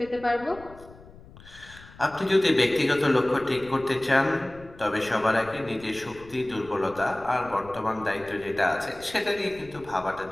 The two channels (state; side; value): noise; left; rumble, 21 dB below the sound